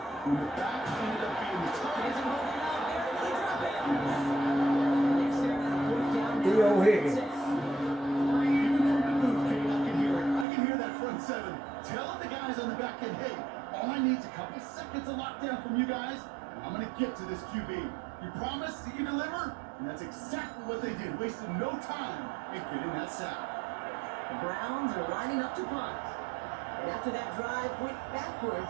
the back ended up being the target. Theo Higgins. Even from the booth, Kate, I can hear it. I can hear that front 7 telling the guys on the back end, hey, all I need is a couple seconds of lockdown from you guys, and I'm going to get to this QB. You promise that you deliver? And that's exactly what they did, wasted no time in getting that sack. The Browns are lining up to punt. And after that drive went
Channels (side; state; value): left; drops out; at 10.5 s